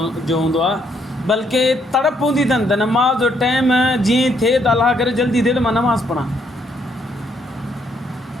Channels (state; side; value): normal; both; correlation 0.71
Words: जो हूंदो आहे, बल्कि तड़प हूंदी अथनि त नमाज़ जो टाइम जीअं थिए त अलाह करे जल्दी थिए त मां नमाज़ पढ़ां.